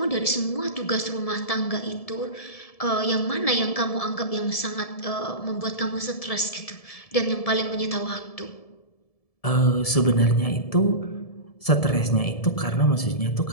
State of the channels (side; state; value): right; late; 1.7 ms